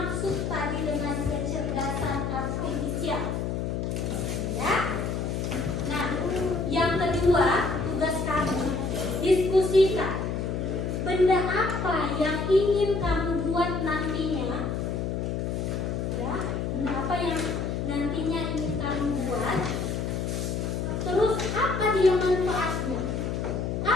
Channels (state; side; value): noise; left; hum, 1 dB below the sound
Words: tadi dengan kecerdasan artifisial? Ya. Nah, yang kedua, tugas kamu diskusikan benda apa yang ingin kamu buat nantinya. Ya, benda apa yang nantinya ingin kamu buat. Terus apa dia manfaatnya?